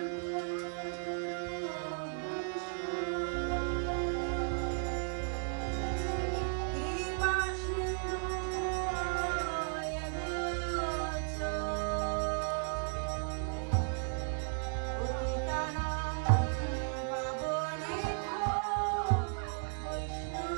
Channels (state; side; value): silent; left; 54 dB below the other